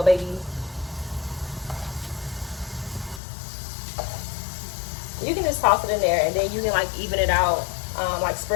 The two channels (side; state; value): right; drops out; at 3.2 s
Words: baby. You can just toss it in there, and then you can like even it out, like